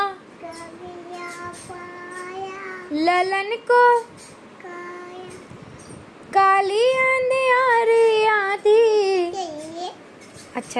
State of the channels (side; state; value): both; identical; correlation 1.00